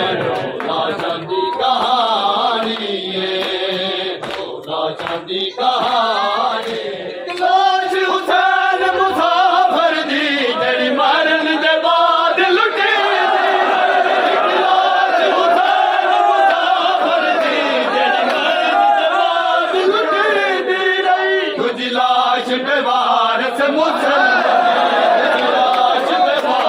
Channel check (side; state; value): both; identical; correlation 1.00